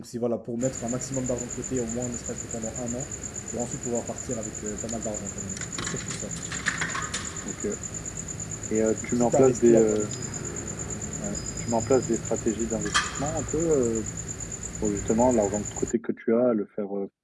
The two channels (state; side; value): identical; both; correlation 1.00